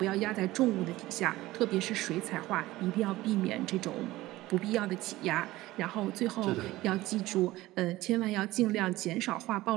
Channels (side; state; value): left; quieter; 17.6 dB